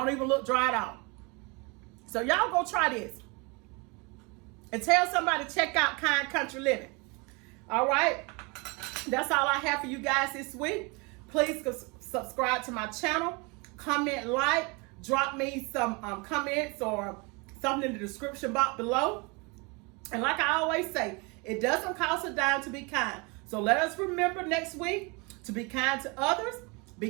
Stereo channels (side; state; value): left; quieter; 29.1 dB